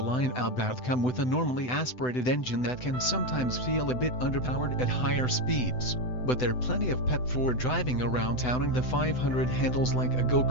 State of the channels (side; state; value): right; late; 7.9 ms